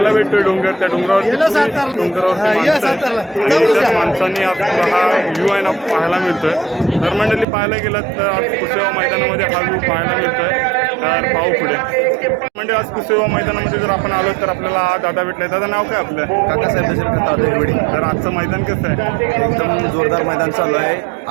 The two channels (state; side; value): drops out; left; at 7.5 s